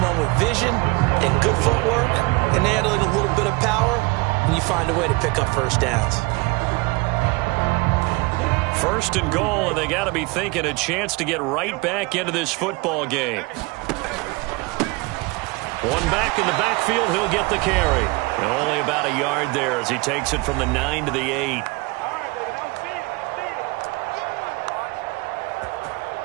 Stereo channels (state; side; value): quieter; left; 25.6 dB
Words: with vision and good footwork and handling a little bit of power, and you find a way to pick up first downs. First and goal, and they got to be thinking a chance to get right back into this football game. One back in the backfield, he'll get the carry. And only about a yard there as he takes it from the 9 to the 8.